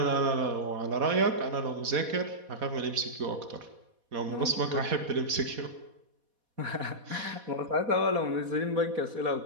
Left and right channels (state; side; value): late; left; 4.1 ms